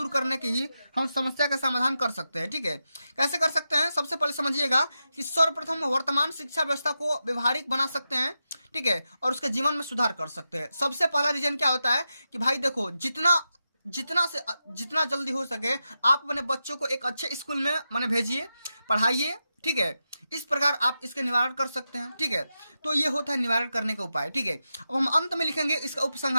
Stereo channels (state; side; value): inverted; both; correlation -0.89